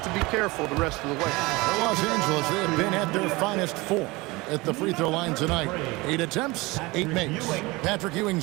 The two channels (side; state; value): left; quieter; 22.9 dB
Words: to be careful the rest of the way. For Los Angeles, they have been at their finest form at the free throw line tonight. 8 attempts, 8 makes. Patrick